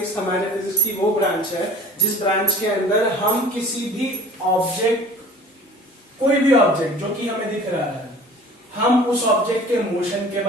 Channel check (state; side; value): normal; both; correlation 0.48